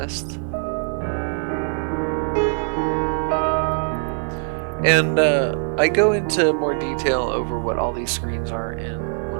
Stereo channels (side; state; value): left; silent; 58 dB below the other